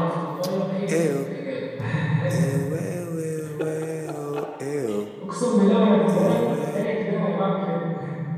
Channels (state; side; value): identical; both; correlation 1.00